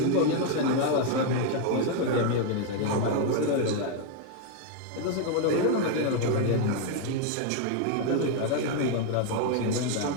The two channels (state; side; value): different; both; correlation 0.01